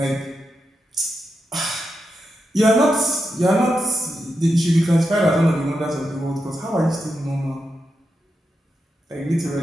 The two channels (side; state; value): both; normal; correlation 0.87